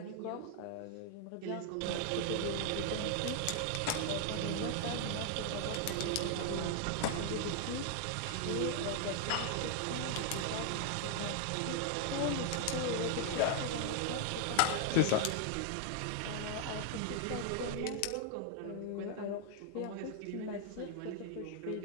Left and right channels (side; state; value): both; different; correlation 0.00